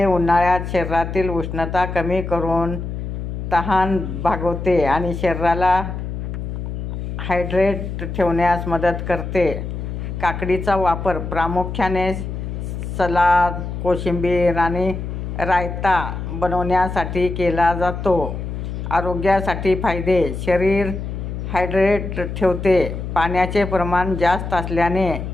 उन्हाळ्यात शरीरातील उष्णता कमी करून तहान भागवते आणि शरीराला हायड्रेट ठेवण्यास मदत करते. काकडीचा वापर प्रामुख्याने सलाद, कोशिंबीर आणि रायता बनवण्यासाठी केला जातो. आरोग्यासाठी फायदे: शरीर हायड्रेट ठेवते. पाण्याचे प्रमाण जास्त असल्याने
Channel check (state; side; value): noise; left; hum, 6 dB below the sound